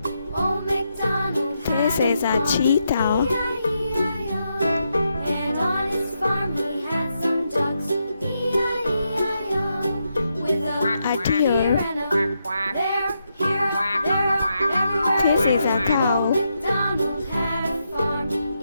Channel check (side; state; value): both; inverted; correlation -0.83